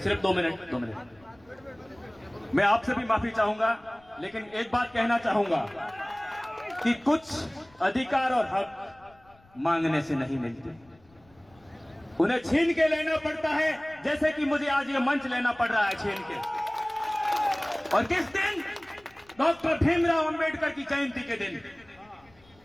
2 मिनट। मैं आपसे भी माफी चाहूंगा, लेकिन एक बात कहना चाहूंगा कि कुछ अधिकार और हक मांगने से नहीं मिलते, उन्हें छीन के लेना पड़ता है, जैसे कि मुझे आज ये मंच लेना पड़ रहा है छीन के। और किस दिन? डॉक्टर भीमराव अंबेडकर की जयंती के दिन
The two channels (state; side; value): noise; left; rumble, 29 dB below the sound